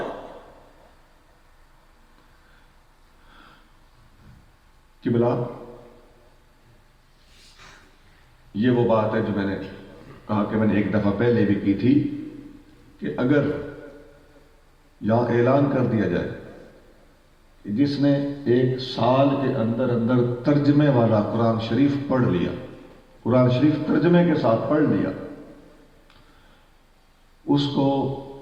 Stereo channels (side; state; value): both; identical; correlation 1.00